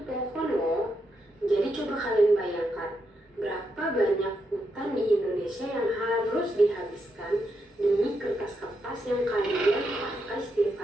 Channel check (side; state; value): both; normal; correlation 0.82